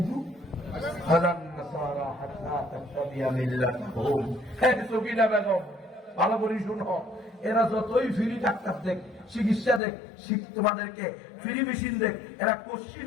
ওয়ালান নাসারা হাত্তা তাত্তাবিয়া মিল্লাতাহুম। হ্যাঁ সকিনা বেগম, ভালো করে শুনো, এরা যতই ফ্রি ডাক্তার দেখ, চিকিৎসা দেখ, তোমাদেরকে ফ্রি মেশিন দেখ, এরা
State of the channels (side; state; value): right; drops out; at 9.8 s